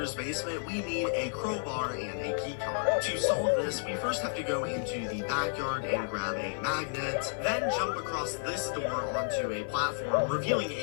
basement, we need a crowbar and a key card. To solve this, we first have to go into the backyard and grab a magnet, then jump across this door onto a platform, revealing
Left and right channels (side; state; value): right; silent; 57 dB below the other